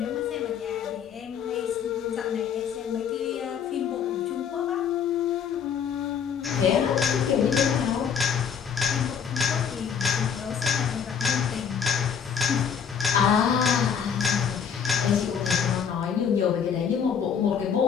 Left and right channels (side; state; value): right; quieter; 7.4 dB